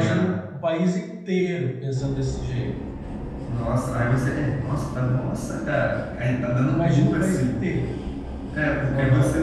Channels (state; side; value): identical; both; correlation 1.00